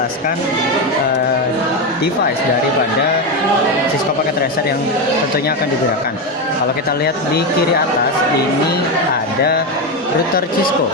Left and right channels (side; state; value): both; normal; correlation 0.11